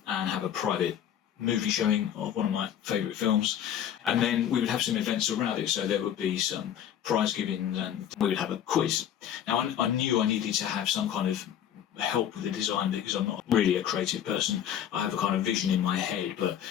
and have a private movie showing of one of my favourite films, and then we would have some events around it. So there would be some prize giving and we would have a quiz. Now I knew I needed to have some kind of help with the design because I'm not really a creative person. I have a kind of vision in my head, but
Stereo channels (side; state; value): right; quieter; 10.0 dB